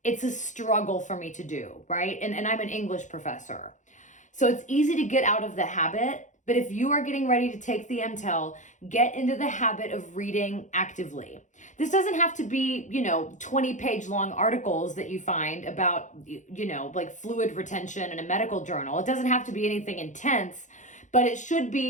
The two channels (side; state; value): right; late; 0.36 ms